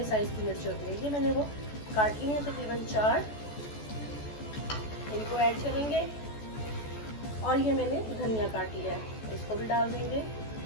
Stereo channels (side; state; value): right; late; 14 ms